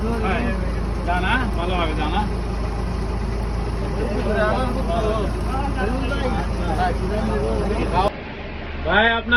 জানা ভালোভাবে জানা ভাই,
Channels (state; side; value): identical; both; correlation 1.00